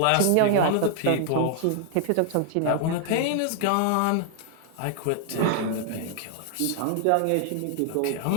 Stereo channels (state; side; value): different; both; correlation 0.00